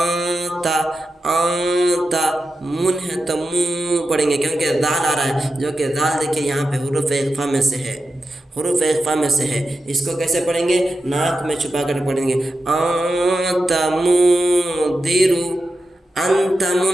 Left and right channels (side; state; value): both; normal; correlation 0.90